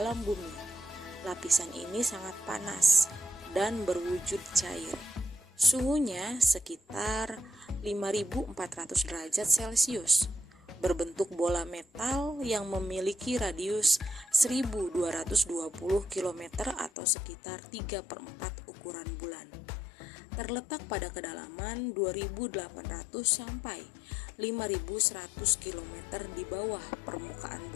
bumi. Lapisan ini sangat panas dan berwujud cair. Suhunya sekitar 5.400 derajat Celcius. Berbentuk bola metal yang memiliki radius 1.220 km atau sekitar 3/4 ukuran bulan. Terletak pada kedalaman 2.800 sampai 5.100 km di bawah permukaan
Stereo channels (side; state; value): right; drops out; at 16.9 s